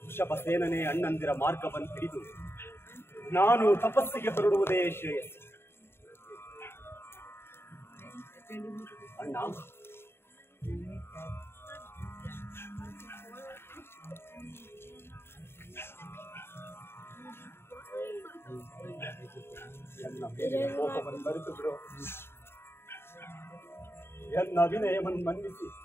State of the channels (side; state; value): right; late; 0.11 ms